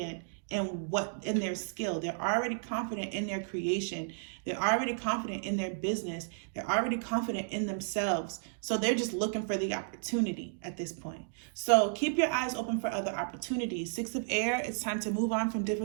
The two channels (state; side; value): silent; left; digital silence